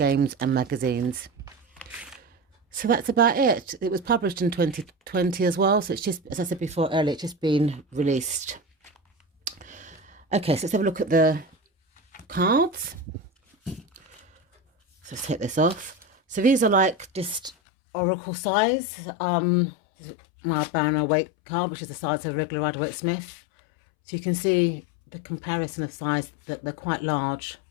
and magazines. So that's about it. It was published in 2020 as well. So it's just, as I said before earlier, it's just been released. Okay, so let's have a look at the cards. So let's take this off. So these are like just oracle size. This is my Banner weight card, which is the size of a regular Rider-Waite Smith. So you can see the comparison of size, that they're quite large,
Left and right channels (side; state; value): right; drops out; at 17.6 s